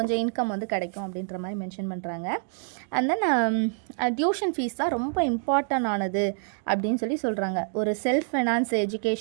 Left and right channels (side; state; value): left; silent; 60 dB below the other